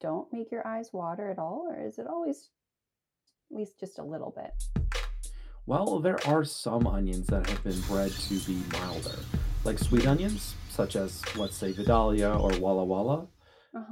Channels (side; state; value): both; identical; correlation 1.00